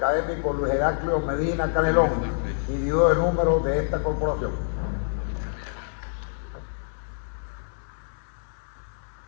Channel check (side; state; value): right; silent; 61 dB below the other